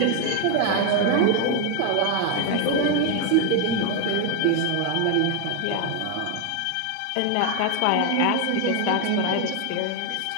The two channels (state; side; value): different; both; correlation 0.01